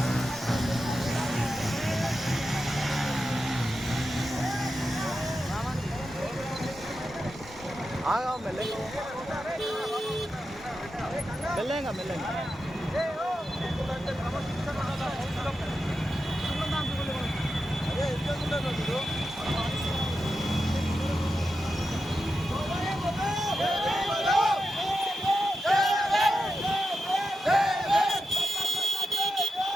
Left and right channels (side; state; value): both; normal; correlation 0.89